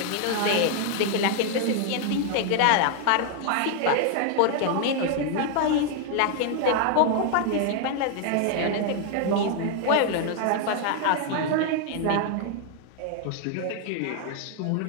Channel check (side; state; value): both; different; correlation 0.00